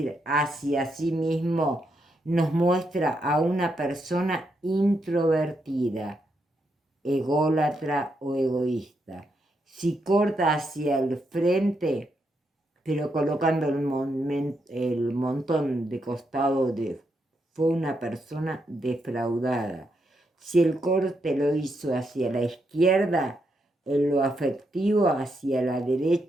hacia sí mismo, nos muestra a una persona introvertida, ególatra o egoísta. Si corta hacia el frente, pero colocando el montón de costado, fue una persona defraudada. Si el corte lo hizo hacia la izquierda, en lo afectivo, hacia la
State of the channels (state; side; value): normal; both; correlation 0.80